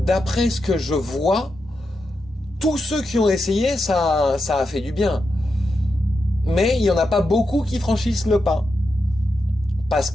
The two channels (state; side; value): normal; both; correlation 0.87